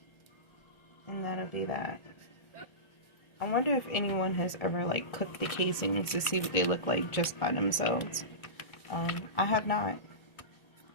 And that'll be that. I wonder if anyone has ever cooked the casings to see what they look like just by themselves. I have not.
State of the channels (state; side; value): late; right; 1.4 ms